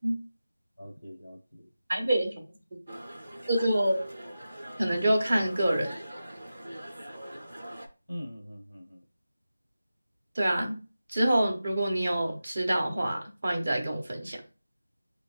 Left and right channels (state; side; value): inverted; both; correlation -0.93